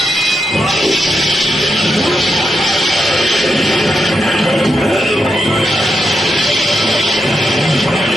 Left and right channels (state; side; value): normal; both; correlation 0.84